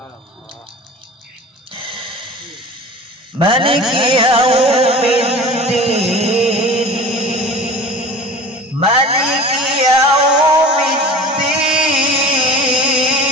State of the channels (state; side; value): normal; both; correlation 0.39